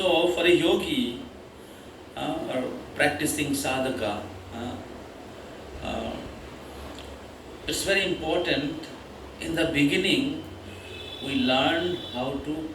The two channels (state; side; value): identical; both; correlation 1.00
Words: for a yogi or practicing sadhaka, it's very important. In the beginning, we learn how to